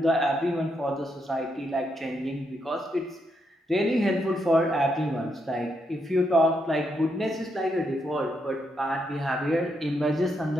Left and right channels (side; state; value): both; normal; correlation 0.80